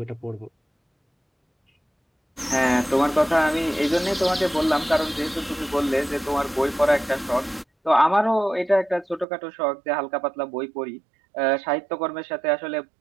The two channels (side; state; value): left; drops out; at 9.2 s